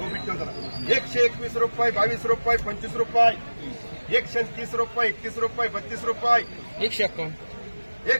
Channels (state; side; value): inverted; both; correlation -1.00